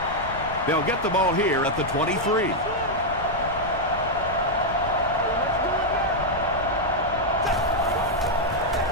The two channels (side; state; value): left; noise; rumble, 12 dB below the sound